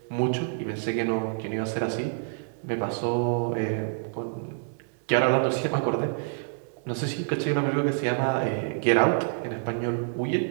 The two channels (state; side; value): silent; left; digital silence